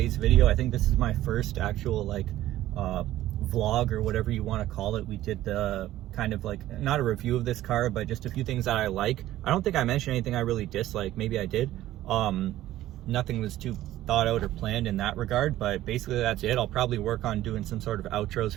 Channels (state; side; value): quieter; left; 14.4 dB